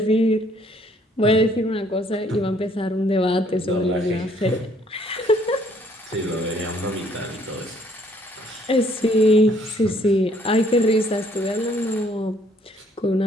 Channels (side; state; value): both; normal; correlation 0.64